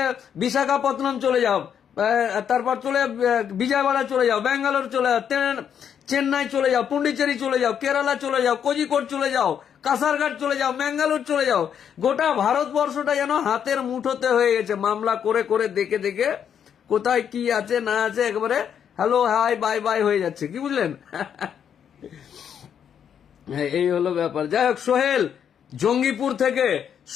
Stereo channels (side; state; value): right; quieter; 8.4 dB